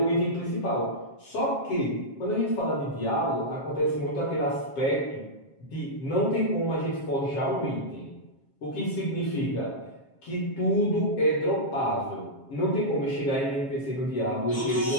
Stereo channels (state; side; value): late; right; 7.4 ms